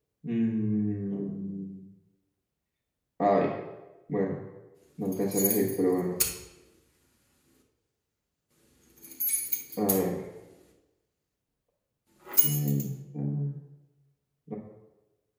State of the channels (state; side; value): identical; both; correlation 1.00